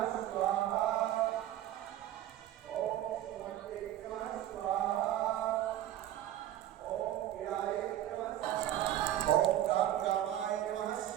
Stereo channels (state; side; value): quieter; left; 12.7 dB